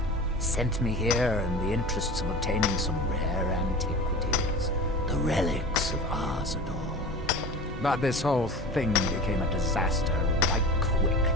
Sent me here in the interests of obtaining some rare antiquities. The relics of Arzador. But this whole thing became a disaster right quick,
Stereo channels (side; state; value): both; normal; correlation 0.34